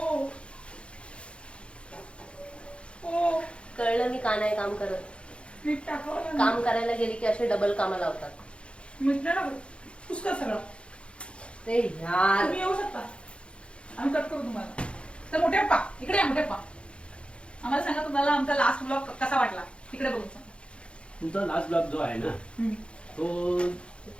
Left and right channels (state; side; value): late; right; 0.058 ms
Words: कळलं मी का नाही काम करत. मीठ टाकावं काम करायला गेली की असे डबल कामं लावतात. मीठ नाही टाकलं पुष्कळ सगळं. ते यार तुम्ही येऊ शकता, आम्ही कट करू तुम्हाला. तर मोठे पप्पा इकडे या. मोठे पप्पा आम्हाला सांगा तुम्हाला आमचा लास्ट ब्लॉग कसा वाटला. तिकडे बघून सांगा. तुमचा लास्ट ब्लॉग जो आहे ना तो